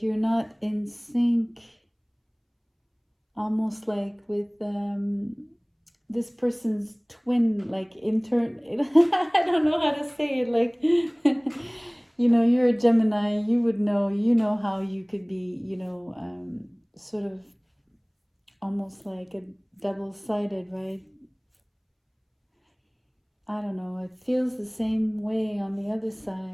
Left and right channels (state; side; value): identical; both; correlation 1.00